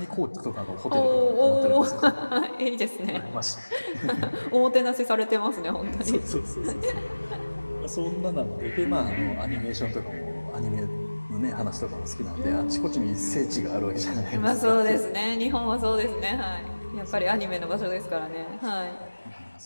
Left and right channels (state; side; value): inverted; both; correlation -1.00